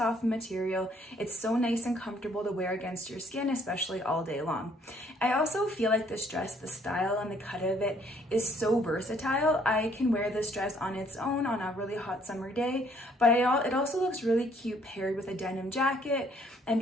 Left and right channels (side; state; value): both; normal; correlation 0.64